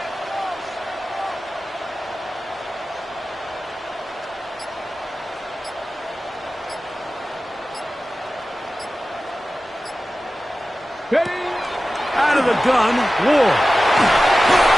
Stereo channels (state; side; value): normal; both; correlation 0.95